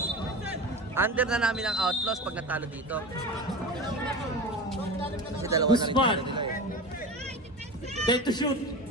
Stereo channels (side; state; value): both; normal; correlation 0.29